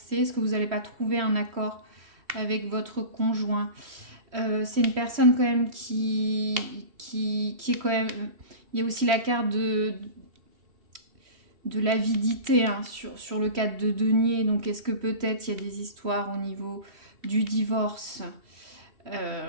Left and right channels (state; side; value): late; left; 3.1 ms